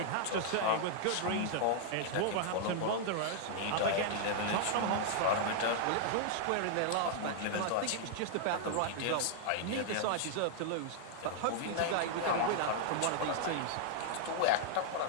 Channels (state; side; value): different; both; correlation -0.01